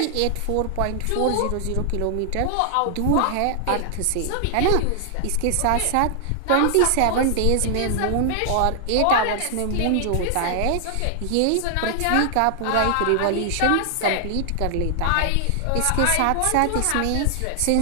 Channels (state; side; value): different; both; correlation 0.00